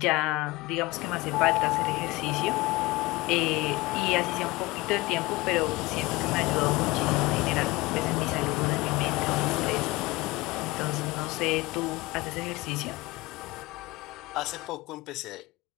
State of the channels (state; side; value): quieter; right; 21.2 dB